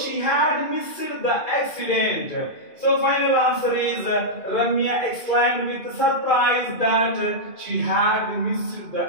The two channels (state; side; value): late; right; 2.5 ms